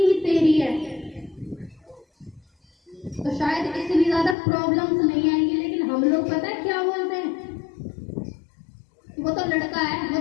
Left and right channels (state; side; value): drops out; right; at 4.4 s